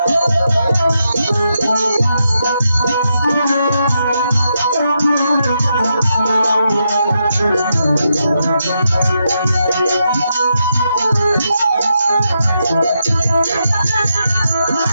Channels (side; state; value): both; inverted; correlation -0.83